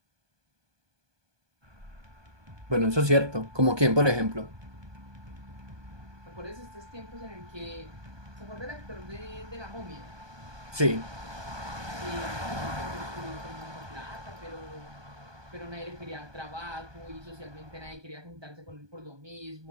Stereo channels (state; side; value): late; left; 1.2 ms